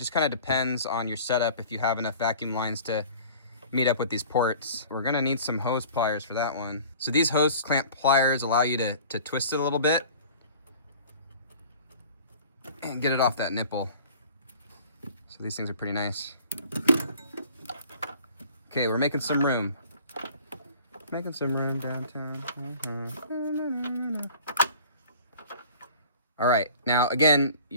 kind of depends on your setup if you have enough vacuum lines to meet up with these ports. We're going to need some hose pliers for that one. So these hose clamp pliers allow you to twist it a little bit and get it off that nipple. So these things are pretty nice. Okay, we're making some room. Making some room downtown. All right, now again,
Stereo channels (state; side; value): inverted; both; correlation -0.46